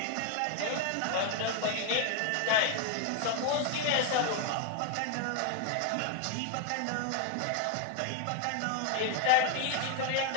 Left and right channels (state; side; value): different; both; correlation 0.01